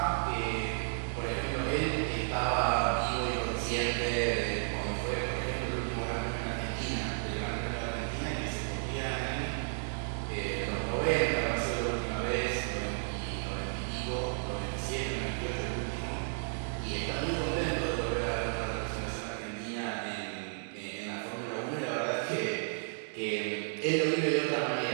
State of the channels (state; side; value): silent; left; digital silence